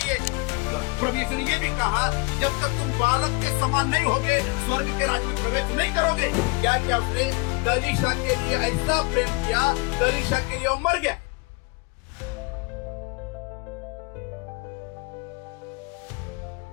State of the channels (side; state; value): right; quieter; 26.4 dB